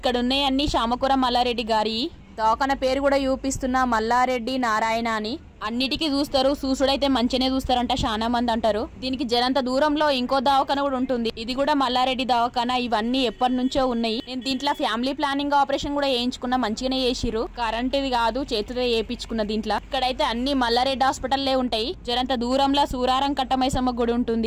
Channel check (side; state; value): both; identical; correlation 1.00